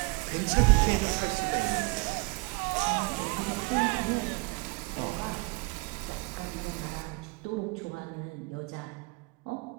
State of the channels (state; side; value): quieter; left; 27.1 dB